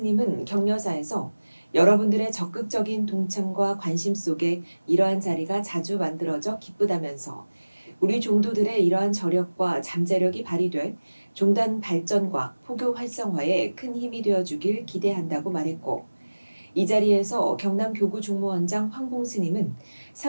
격려사에서 여러분들의 적극적인 동참과 관심 속에 이러한 자리가 자주 만들어져 기쁘다면서 우리 종도들의 이러한 저력과 잠재력이 발휘돼 종단 발전과 포교 활성화에 큰 힘이 되어주길 기대한다고 말했고 이 자리에서 경남교구 총무원장 황봉 스님은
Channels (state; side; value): inverted; both; correlation -1.00